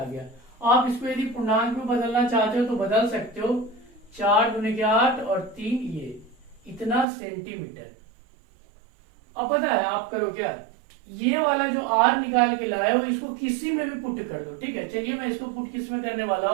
गया। आप इसको यदि पूर्णांक में बदलना चाहते हो तो बदल सकते हो, 4 दूने के 8 और 3 ये इतना सेंटीमीटर। अब पता है आप करो क्या, ये वाला जो आर निकाल के लाए हो इसको किसी में भी पुट कर दो। ठीक है, चलिए मैं इसको पुट किस में करने वाला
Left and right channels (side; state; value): left; drops out; at 7.1 s